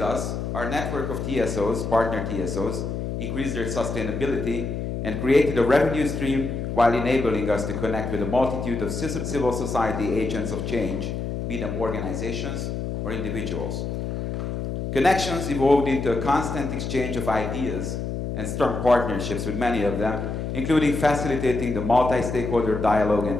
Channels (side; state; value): left; noise; hum, 4 dB below the sound